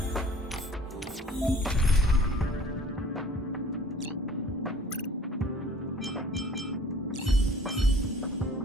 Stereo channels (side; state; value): both; normal; correlation 0.50